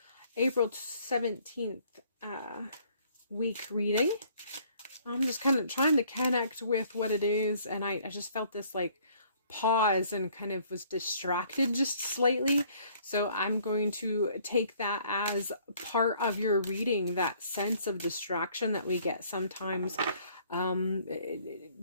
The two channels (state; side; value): inverted; both; correlation -0.60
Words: April 17th week reading. I'm just kind of trying to connect with what it is, and I just felt this like pause and kind of was distracted just slightly. So I'm going to take that as part of your reading, that sense of distraction that we get sometimes. Kind